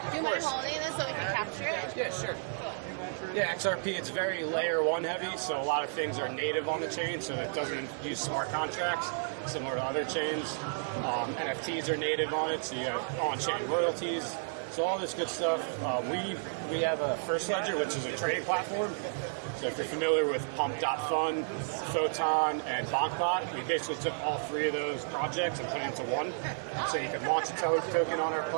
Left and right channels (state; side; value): silent; left; digital silence